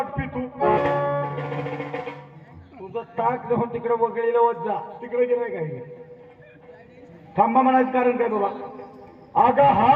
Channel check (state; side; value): identical; both; correlation 1.00